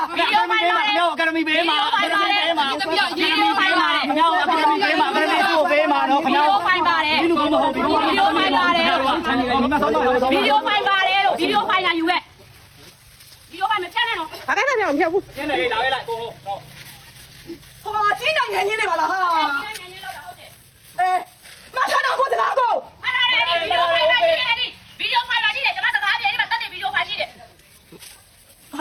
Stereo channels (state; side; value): identical; both; correlation 1.00